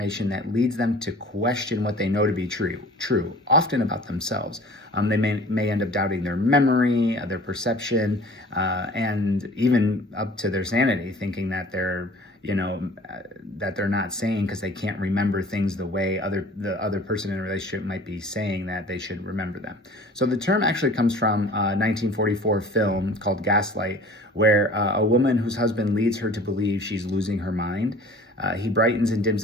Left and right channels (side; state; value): both; normal; correlation 0.46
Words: that leads them to question what they know to be true, often about themselves. They may end up doubting their memory, their perception, and even up to their sanity, thinking that they're not saying because they can't remember things the way the other person in a relationship might be saying that they should remember them. So the term actually comes from a 1944 film called Gaslight, where a woman whose husband leads her to believe she's losing her mind. He brightens and dims